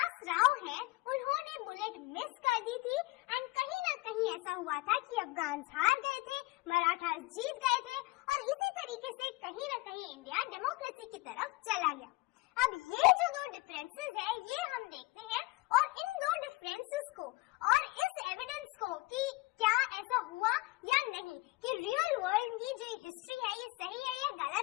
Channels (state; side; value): quieter; right; 21.5 dB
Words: राव है उन्होंने बुलेट मिस कर दी थी एंड कहीं ना कहीं ऐसा हुआ था कि अफगान हार गए थे, मराठा जीत गए थे और इसी तरीके से कहीं ना कहीं इंडिया डेमोक्रेसी की तरफ चला गया। अब ये जो 2 डिफरेंसेस है ये हम देखते हैं और इन 2 डिफरेंसेस को और इस एविडेंस को कि क्या ऐसा हुआ या नहीं कि रियल वर्ल्ड की जो हिस्ट्री है ये सही है या